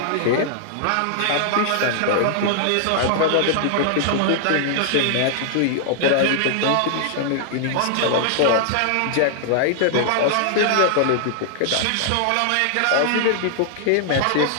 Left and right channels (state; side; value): different; both; correlation -0.01